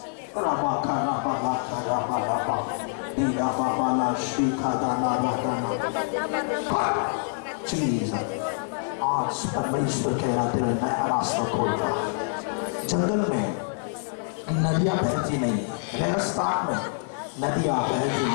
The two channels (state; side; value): silent; right; 61 dB below the other